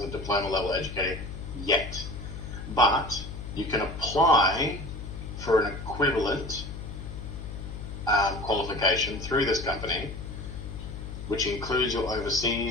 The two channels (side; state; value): left; noise; hum, 9 dB below the sound